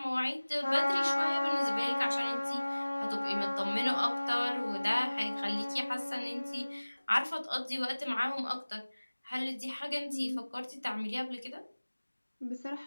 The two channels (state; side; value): inverted; both; correlation -1.00